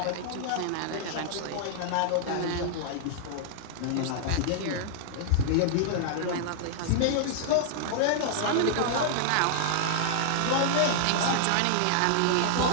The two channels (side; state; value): both; different; correlation -0.01